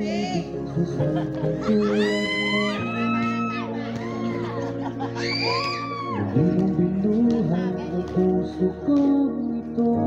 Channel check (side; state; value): both; identical; correlation 1.00